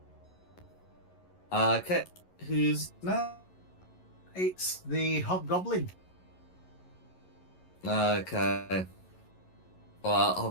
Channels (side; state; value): right; late; 11 ms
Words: Okay, who's next? It's the Hobgoblin. Okay. Well,